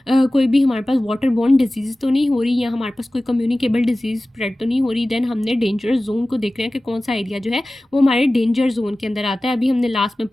कोई भी हमारे पास वाटर बॉर्न डिजीज़ तो नहीं हो रही या हमारे पास कोई कम्युनिकेबल डिजीज़ स्प्रेड तो नहीं हो रही। देन हमने डेंजरस जोन को देखना है कि कौन सा एरिया जो है वो हमारे डेंजर जोन के अंदर आता है। अभी हमने लास्ट में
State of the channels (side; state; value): both; normal; correlation 0.97